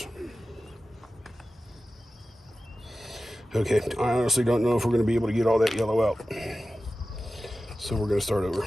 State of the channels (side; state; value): both; normal; correlation 0.94